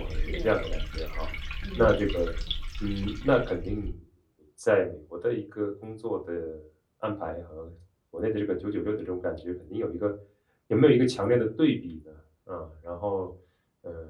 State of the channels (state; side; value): identical; both; correlation 1.00